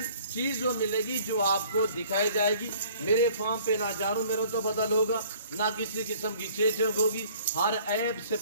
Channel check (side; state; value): both; inverted; correlation -0.54